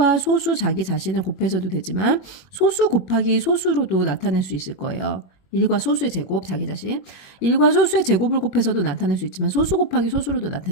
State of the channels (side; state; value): right; late; 21 ms